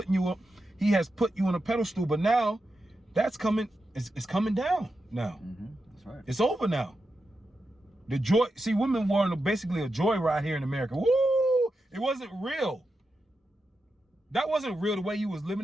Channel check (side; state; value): both; normal; correlation 0.88